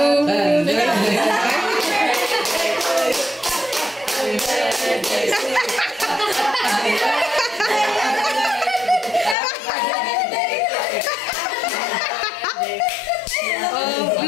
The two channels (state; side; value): drops out; right; at 9.3 s